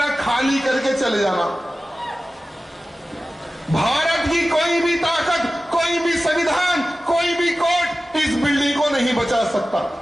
खाली करके चले जाना। भारत की कोई भी ताकत, कोई भी संविधान, कोई भी कोर्ट इस बिल्डिंग को नहीं बचा सकता।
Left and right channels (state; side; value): normal; both; correlation 0.96